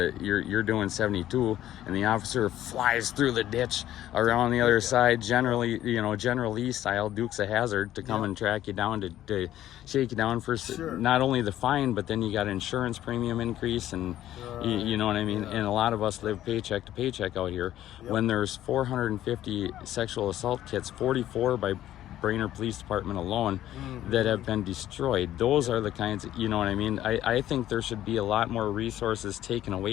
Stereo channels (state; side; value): quieter; right; 12.8 dB